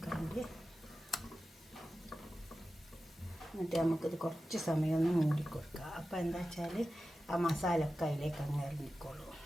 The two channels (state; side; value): normal; both; correlation 0.93